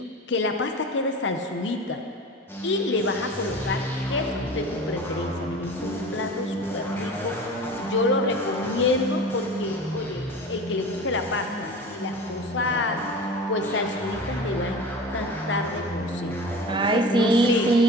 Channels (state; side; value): normal; both; correlation 0.35